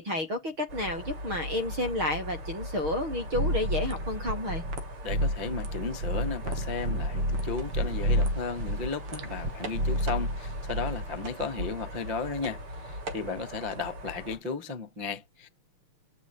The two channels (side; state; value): left; late; 6.4 ms